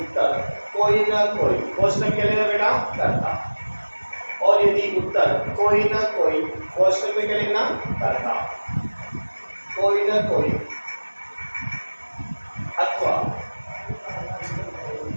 उत्तर कोई न कोई, क्वेश्चन क्या लेना बेटा? करता। और यदि उत्तर कोई न कोई, क्वेश्चन में क्या लिखना? करता। कोई न कोई अथवा,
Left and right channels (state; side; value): inverted; both; correlation -1.00